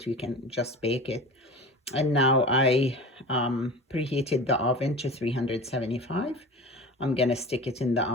you can just bake it. And now I preheated the oven to 375. I'm gonna stick it in the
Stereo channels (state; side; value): normal; both; correlation 0.35